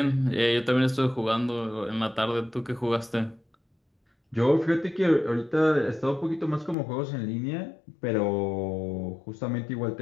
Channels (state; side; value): drops out; right; at 6.8 s